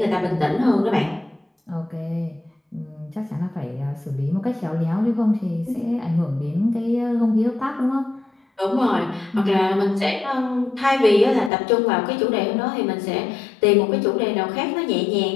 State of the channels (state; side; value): drops out; right; at 11.5 s